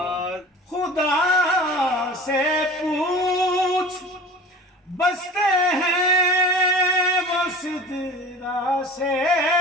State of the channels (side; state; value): both; normal; correlation 0.39